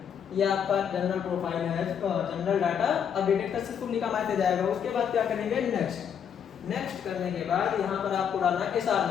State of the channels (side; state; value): right; quieter; 8.0 dB